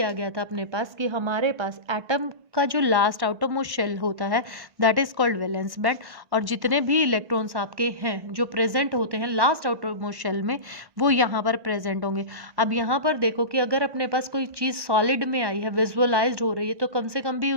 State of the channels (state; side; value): late; left; 1.5 ms